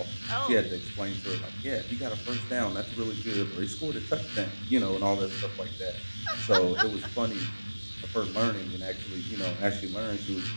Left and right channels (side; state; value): both; inverted; correlation -1.00